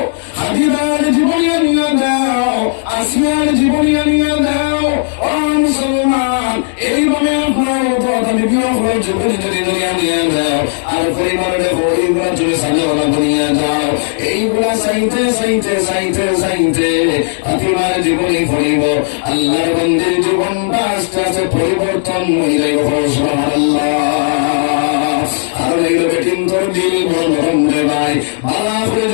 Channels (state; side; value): silent; right; digital silence